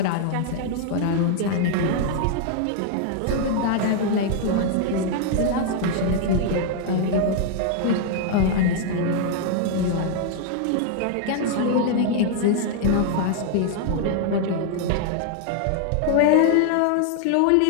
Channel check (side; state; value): both; different; correlation 0.00